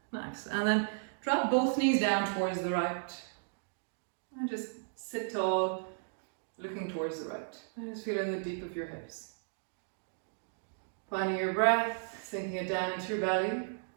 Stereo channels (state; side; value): silent; left; digital silence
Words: Nice. And then drop both knees down towards the right. And just sit tall, looking towards the right. And just feeling the deep of your hips. Finding your breath, sinking it down into your belly.